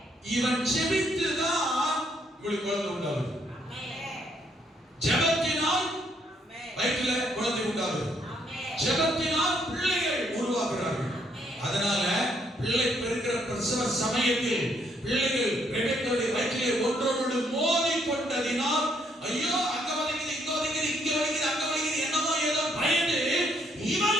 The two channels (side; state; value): both; normal; correlation 0.71